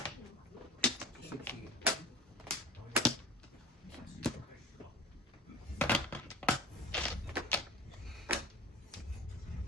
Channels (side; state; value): both; normal; correlation 0.39